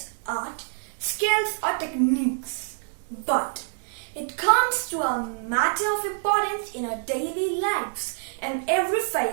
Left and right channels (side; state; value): left; silent; 61 dB below the other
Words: art, skills or techniques? But it comes to a matter of importance in our daily lives and every